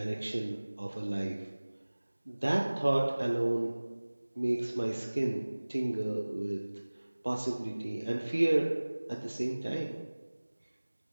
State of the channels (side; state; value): both; inverted; correlation -1.00